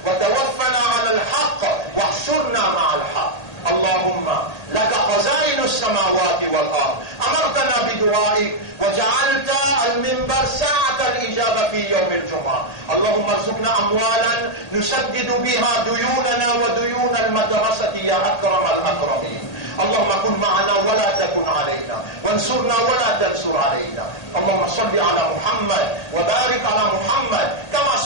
وتوفنا على الحق واحشرنا مع الحق. اللهم لك خزائن السماوات والأرض، أمرتنا بدعائك وجعلت المنبر ساعة الإجابة في يوم الجمعة. اللهم ارزقنا أموالا نسدد بها ديوننا وديون المدرسة يا أكرم الأكرمين. اللهم كن معنا ولا تكن علينا، وانصرنا ولا تنصر علينا. اللهم صل على محمد وبارك على محمد كما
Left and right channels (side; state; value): right; late; 1.8 ms